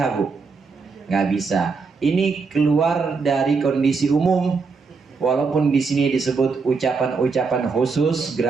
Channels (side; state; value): left; quieter; 4.7 dB